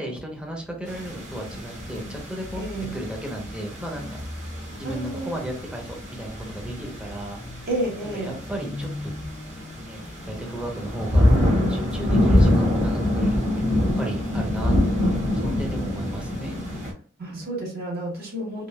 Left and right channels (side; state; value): both; normal; correlation 0.80